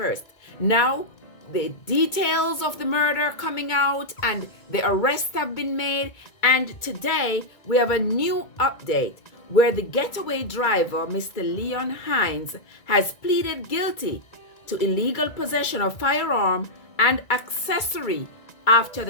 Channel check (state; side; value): late; right; 2.2 ms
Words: Now, the details of the murder coming out and the arrests have been made, and today we have a new update where the getaway driver, Mr. Leon Hines, has pleaded guilty to illegal possession of firearm and accessory after